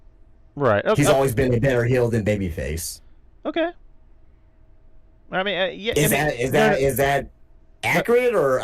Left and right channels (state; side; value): identical; both; correlation 1.00